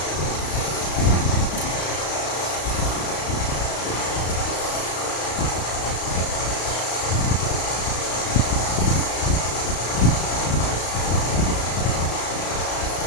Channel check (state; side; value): late; right; 34 ms